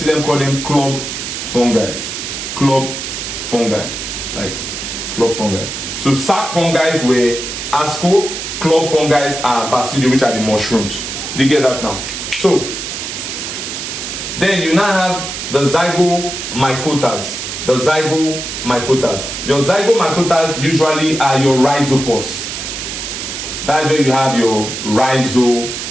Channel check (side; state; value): right; noise; hiss, 6 dB below the sound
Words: them call them club fungi. Like club fungi. So sac fungi were asco, club fungi are basidio, which are the mushrooms. Do you get that now? So then you now have the zygomycotas. The zygomycotas. Your zygomycotas usually are your rhizopause. That's where you have your